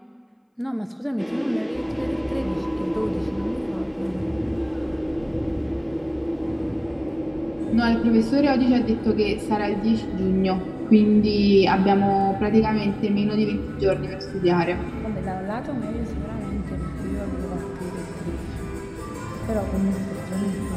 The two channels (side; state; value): both; identical; correlation 1.00